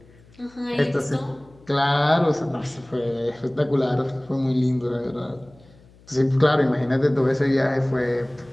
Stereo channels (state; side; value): noise; left; hum, 27 dB below the sound